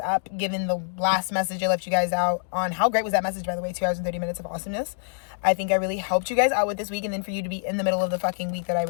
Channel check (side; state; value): right; silent; digital silence